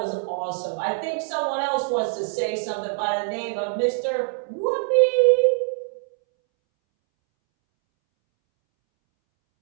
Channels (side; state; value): left; silent; 63 dB below the other